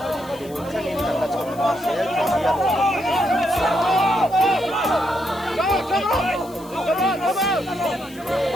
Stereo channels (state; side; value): noise; left; hiss, 21 dB below the sound